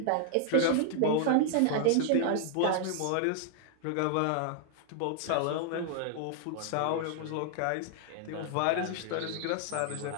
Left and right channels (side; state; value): both; different; correlation -0.01